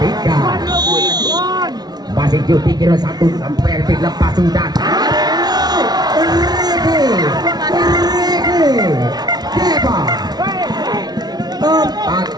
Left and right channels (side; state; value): left; late; 0.19 ms